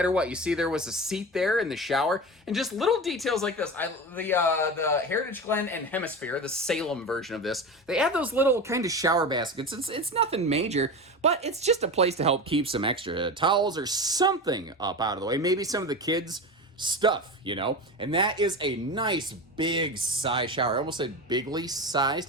what. You see there was a seat there in the shower, and just little details like this. The Heritage Glen and Hemisphere, the Salem version of this, they have those little kind of shower baskets. It's nothing major, but it's just a place to help keep some extra towels or something up out of the way. Maybe some of the kids' stuff, you know? And that is a nice big size shower. I almost said bigly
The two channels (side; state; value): both; normal; correlation 0.26